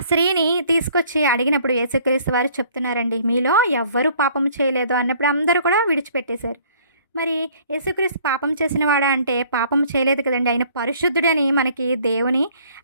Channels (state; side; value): inverted; both; correlation -0.57